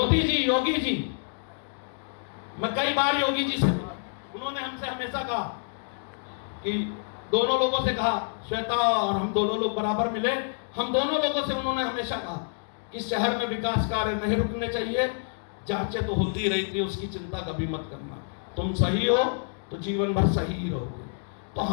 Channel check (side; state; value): right; silent; digital silence